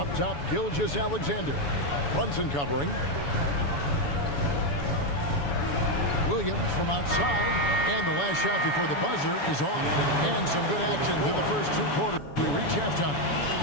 top, Gilgeous-Alexander. Brunson covering. Williams from outside. And the last shot before the buzzer is off. And some good action through the first 2 quarters. We reach halftime.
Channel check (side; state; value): right; late; 7.0 ms